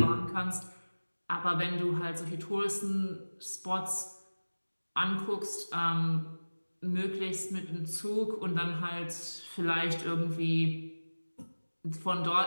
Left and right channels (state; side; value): inverted; both; correlation -1.00